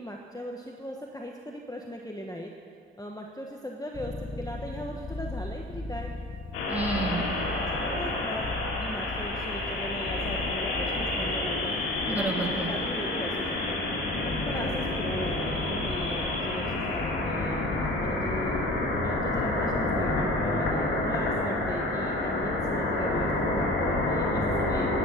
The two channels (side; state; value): both; normal; correlation 0.39